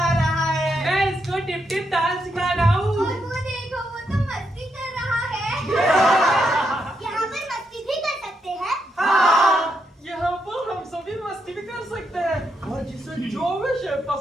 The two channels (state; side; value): normal; both; correlation 0.80